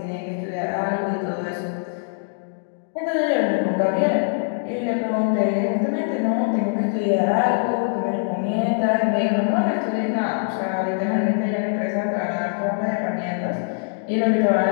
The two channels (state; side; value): silent; right; digital silence